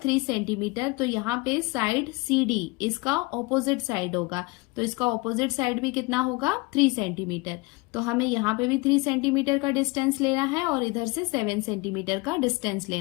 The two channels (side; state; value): right; quieter; 25.8 dB